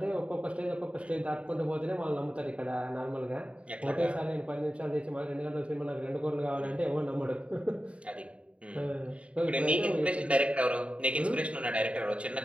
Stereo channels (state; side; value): late; left; 0.062 ms